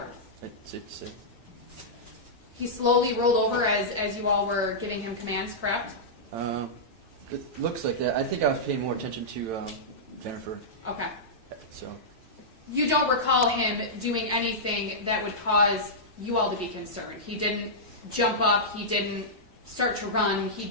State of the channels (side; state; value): left; late; 4.7 ms